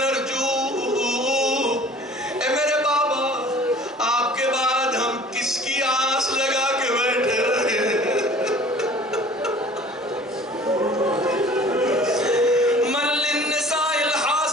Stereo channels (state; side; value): normal; both; correlation 0.48